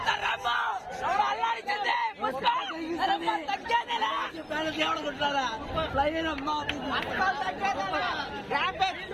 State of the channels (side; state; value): both; identical; correlation 1.00